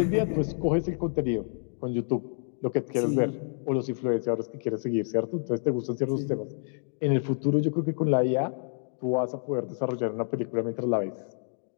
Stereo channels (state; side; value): silent; right; digital silence